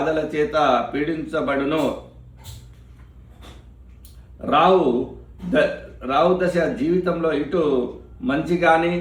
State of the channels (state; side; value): identical; both; correlation 1.00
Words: చేత పీడించబడును. రావు దశ జీవితంలో ఇటు మంచి కానీ